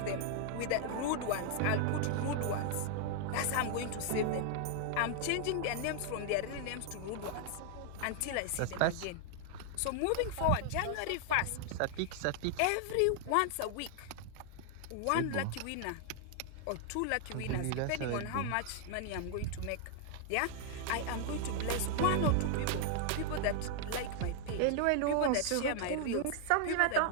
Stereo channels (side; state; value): both; different; correlation 0.00